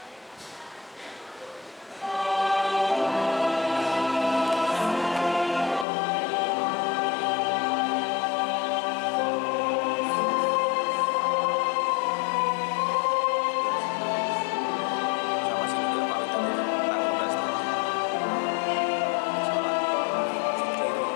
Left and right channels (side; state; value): right; drops out; at 5.9 s